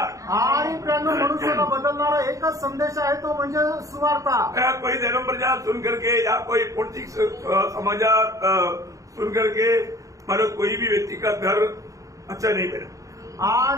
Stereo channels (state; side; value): late; left; 0.16 ms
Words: आणि प्रियानो, मनुष्याला बदलणारा एकच संदेश आहे, तो म्हणजे सुवार्ता। कोई धर्म प्रचार सुन करके या कोई पॉलिटिक्स समाचार सुन करके मतलब कोई भी व्यक्ति का घर अच्छा नहीं बना।